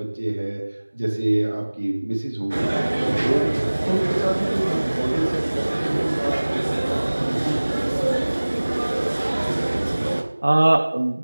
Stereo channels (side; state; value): both; inverted; correlation -1.00